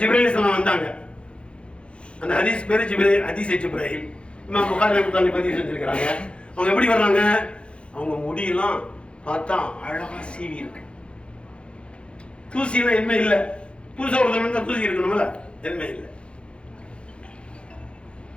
அலைஹிஸ்ஸலாம் வந்தாங்க. அந்த ஹதீஸ் பேரு ஜிப்ரீல், ஹதீஸ் ஜிப்ரீல். இமாம் புகாரி ரஹ்மத்துல்லாஹி பதிவு செஞ்சிருக்காங்க. அவங்க எப்படி வர்றாங்க? அவங்க முடியெல்லாம் பார்த்தா அழகா சீவி இருக்கு, தூசியெல்லாம் எதுவுமே இல்லை. புதுசா ஒருத்தர் தூசி இருக்கணும்ல, எதுவுமே இல்லை.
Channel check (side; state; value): right; late; 0.058 ms